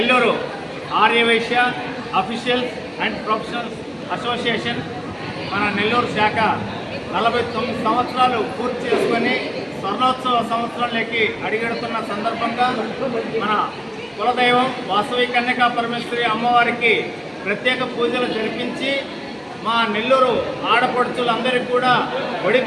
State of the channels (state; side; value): identical; both; correlation 1.00